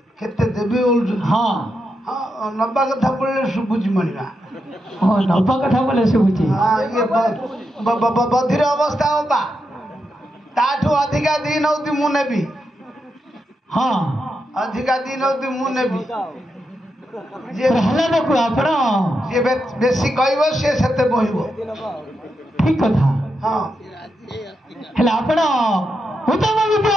କେତେ ଦେବି ବୋଲୁଛନ୍ତି ହଁ ନବା କଥା ପଡ଼ିଲେ ଶୁଭୁଛି ମଣିବା ହଁ ନବା କଥା ବୋଲେ ଶୁଭୁଛି ଇଏ ବଧିର ଅବସ୍ଥା ହବା ତାଠୁ ଅଧିକା ଦି ନଉତି ମୁଁ ନେବି ହଁ ଅଧିକା ଦି ନଉତି ମୁଁ ନେବି ପ୍ରହ୍ଲାଦକୁ ଆପଣ ଯିଏ ବେଶୀ କହିବ ସିଏ ସେତେ ବହିବ ଠିକ କଥା ହଁ ହେଲେ ଆପଣ ଉତ୍ତମ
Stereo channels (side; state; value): both; normal; correlation 0.85